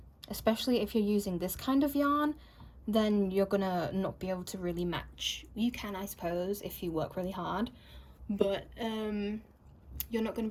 especially if you're using this kind of yarn. Then you're gonna not be able to really match. You can, I suppose, if you work really hard, but you're not going to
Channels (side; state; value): both; identical; correlation 1.00